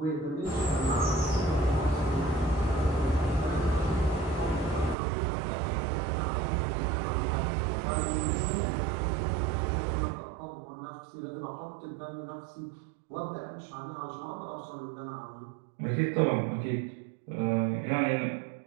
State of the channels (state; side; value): drops out; left; at 5.0 s